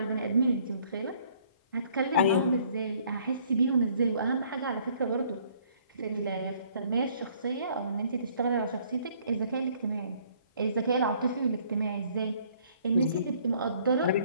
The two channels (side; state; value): both; inverted; correlation -0.61